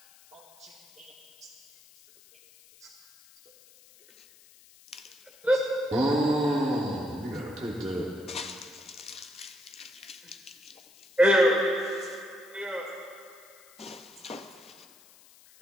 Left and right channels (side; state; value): left; noise; hiss, 25 dB below the sound